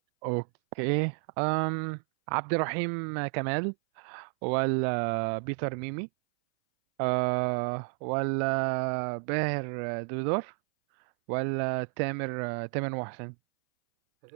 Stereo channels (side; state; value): left; silent; 57 dB below the other